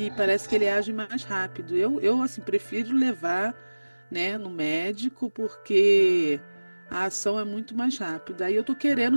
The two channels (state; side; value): inverted; both; correlation -1.00